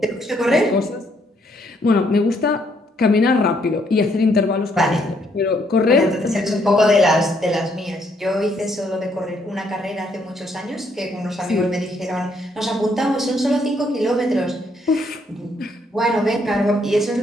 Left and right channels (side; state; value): both; normal; correlation 0.71